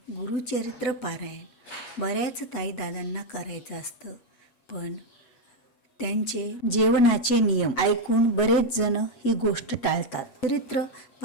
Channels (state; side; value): late; right; 7.3 ms